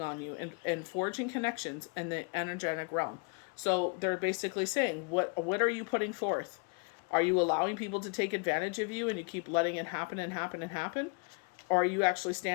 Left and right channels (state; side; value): quieter; right; 33.7 dB